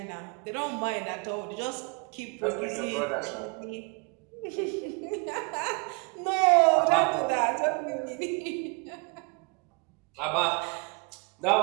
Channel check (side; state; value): left; quieter; 32.6 dB